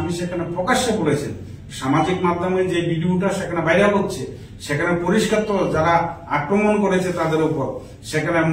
সেখানে প্রকাশ্যে বলেছেন, সামাজিক মাধ্যমে যে ভিডিওটা সেখানে ভাইরাল হচ্ছে সেখানে পরিষ্কার তো যারা আক্রমণ করেছে তাদের উপর, সেখানে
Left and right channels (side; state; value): both; identical; correlation 1.00